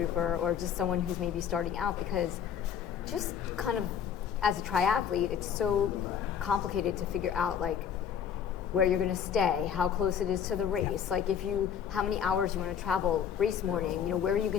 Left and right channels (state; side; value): quieter; right; 8.3 dB